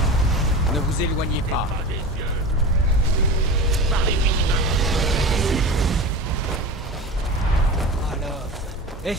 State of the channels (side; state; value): both; normal; correlation 0.30